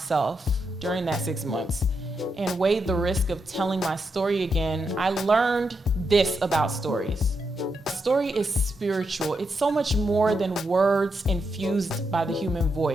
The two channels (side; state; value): both; normal; correlation 0.83